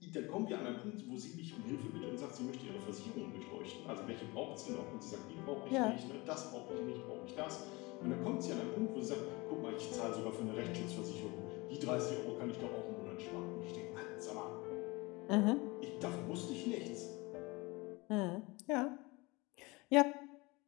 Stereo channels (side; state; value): right; quieter; 24.2 dB